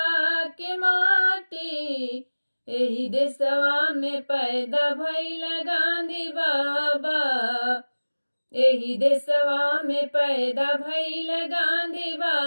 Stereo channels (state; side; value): inverted; both; correlation -1.00